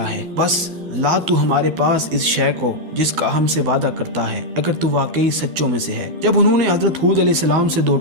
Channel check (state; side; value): late; left; 12 ms